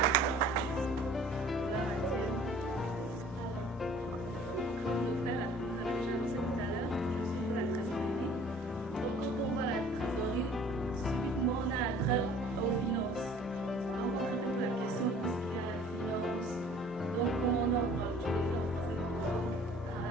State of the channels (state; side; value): normal; both; correlation 0.51